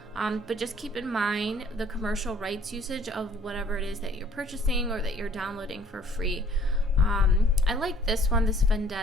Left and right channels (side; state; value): both; normal; correlation 0.57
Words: But just keep in mind the commercial rights usage of whatever it is that you're purchasing or that you're downloading for free. I like this one, this